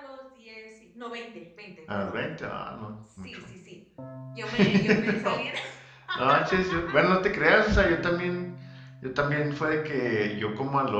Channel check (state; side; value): identical; both; correlation 1.00